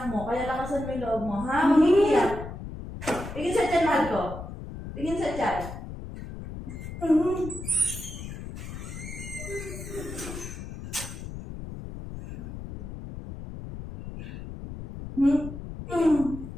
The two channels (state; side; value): noise; left; rumble, 10 dB below the sound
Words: mo. Kaya lakasan mo yung loob mo. Ha? Umiiyak. Tingin sa tiyan, mahal ko. Tingin sa tiyan.